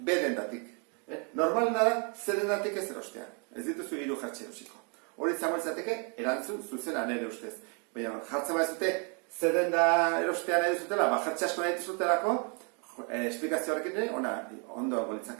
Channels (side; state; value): left; quieter; 36.5 dB